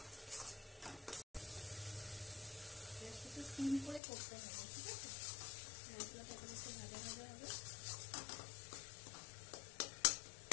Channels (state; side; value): drops out; right; at 4.0 s